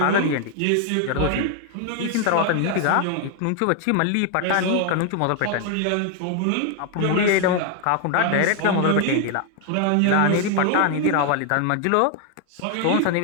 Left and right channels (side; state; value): both; different; correlation 0.00